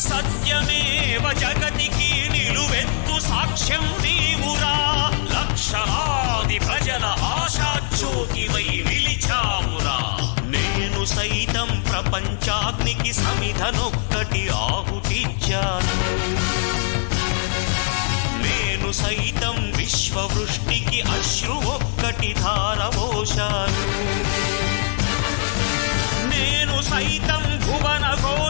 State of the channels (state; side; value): silent; right; digital silence